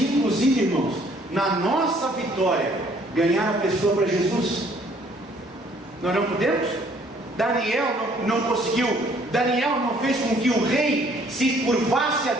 irmãos, na nossa vitória, ganhar a pessoa para Jesus. Nós não podemos? Daniel não conseguiu. Daniel não fez com que o rei se curvasse a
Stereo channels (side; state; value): both; normal; correlation 0.61